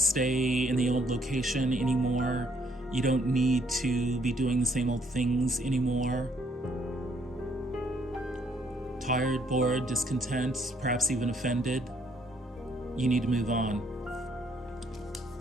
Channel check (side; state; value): both; normal; correlation 0.68